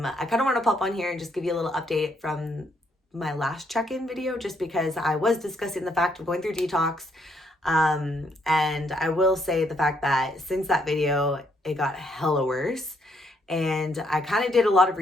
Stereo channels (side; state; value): both; normal; correlation 0.72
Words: kind of want to pop on here and just give you a little update from my last check-in video just because I was discussing the fact of going through detox. And I will say the fact that since that video, it got hella worse. And I kind of did a lot of